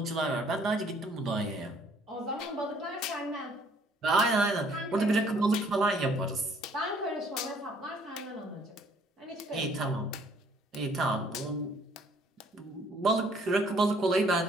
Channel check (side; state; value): both; normal; correlation 0.61